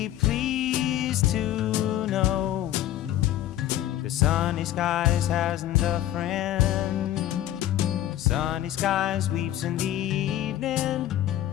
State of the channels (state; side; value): quieter; right; 12.9 dB